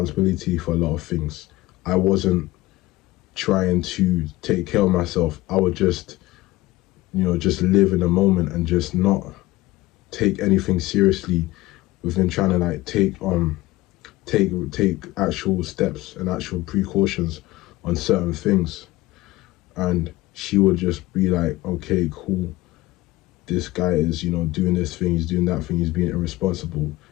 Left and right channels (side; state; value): right; quieter; 18.6 dB